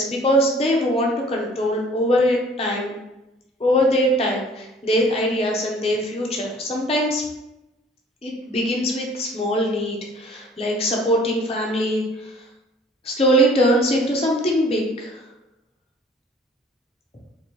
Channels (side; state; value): both; normal; correlation 0.52